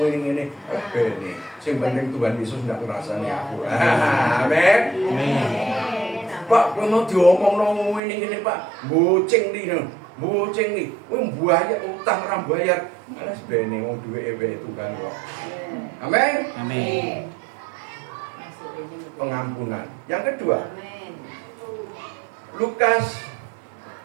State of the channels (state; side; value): drops out; left; at 8.0 s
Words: Ini, sing penting Tuhan Yesus ndak ngrasani aku. Amin. Pak, kowe mau diomongno ngene Pak. Bocing nih. Kowe mbayar utang ora bayar. Alas bene wong duwe Tuhan kok. Amin. Amin. Pengampunan. Yang kedua, Lukas